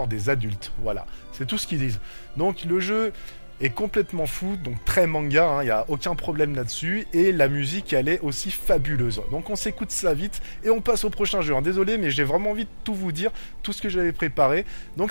des adultes. Voilà, c'est tout ce qu'ils disent. Donc le jeu est complètement fou, donc très manga, hein, y a aucun problème là-dessus, et la musique elle est aussi fabuleuse. Donc on s'écoute ça vite et on passe au prochain jeu, hein. Désolé mais j'ai vraiment envie de tout vous dire, tout ce que j'avais préparé,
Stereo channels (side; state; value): both; inverted; correlation -1.00